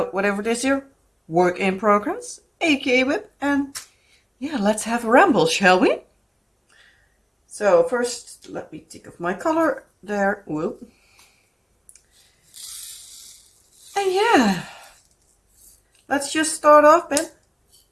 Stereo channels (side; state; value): both; identical; correlation 1.00